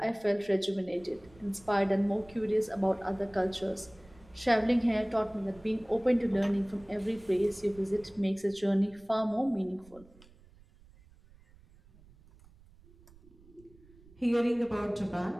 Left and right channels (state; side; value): noise; right; rumble, 26 dB below the sound